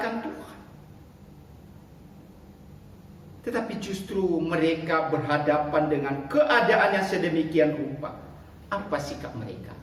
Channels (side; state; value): both; identical; correlation 1.00